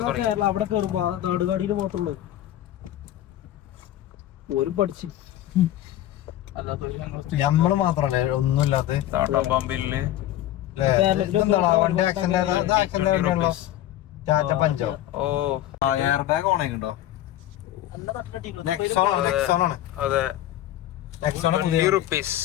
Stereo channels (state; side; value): quieter; right; 13.3 dB